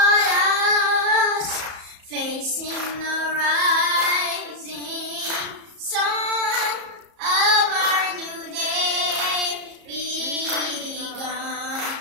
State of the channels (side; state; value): left; late; 34 ms